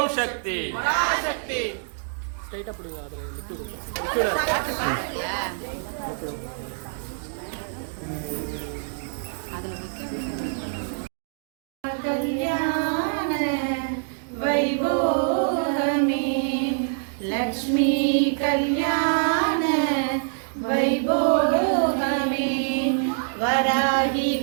சக்தி. कल्याण वैभोगमे लक्ष्मी कल्याण वैभोगमे वराही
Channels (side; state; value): left; silent; digital silence